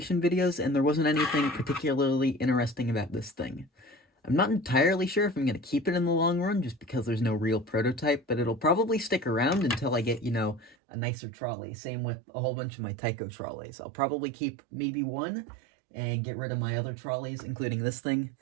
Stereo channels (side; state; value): left; drops out; at 10.8 s